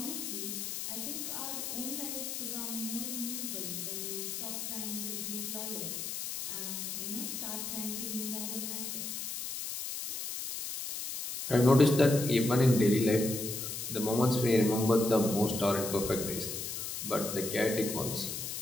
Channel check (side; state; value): left; noise; hiss, 5 dB below the sound